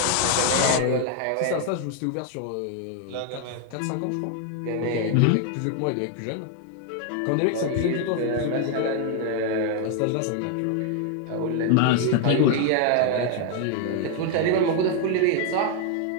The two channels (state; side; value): different; both; correlation 0.00